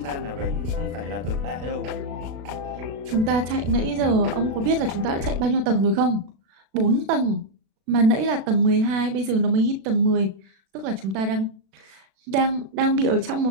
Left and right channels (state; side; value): late; left; 36 ms